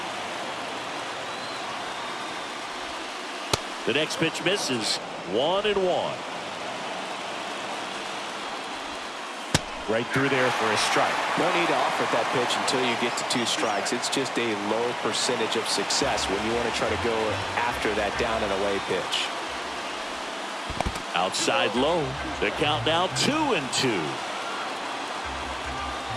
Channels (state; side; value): identical; both; correlation 1.00